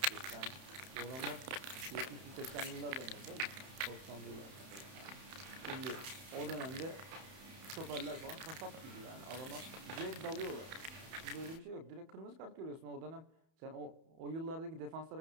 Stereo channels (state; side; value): late; left; 31 ms